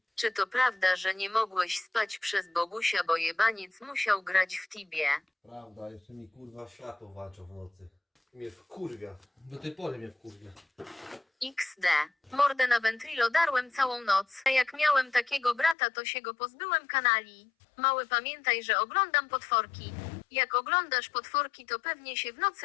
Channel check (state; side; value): drops out; right; at 15.8 s